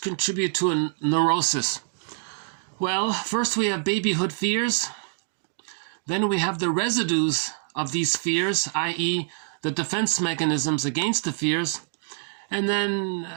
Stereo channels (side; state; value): left; silent; digital silence